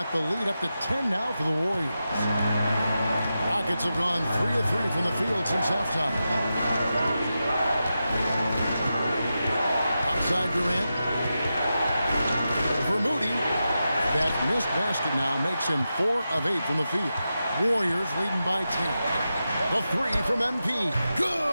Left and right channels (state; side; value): inverted; both; correlation -0.90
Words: the lead up to 10 now for the Warriors. Rockets have gone 3 of 3 from the field since halftime. Outside Durant. For Moody. That missed basket now makes him 4 of 8 from the field. Warriors leading by 10. The three from MP.